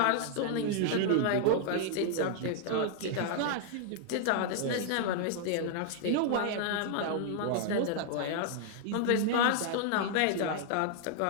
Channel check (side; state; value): both; different; correlation -0.01